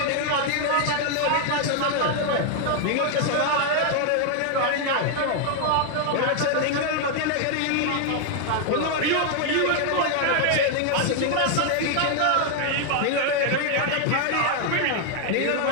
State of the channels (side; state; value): both; different; correlation 0.00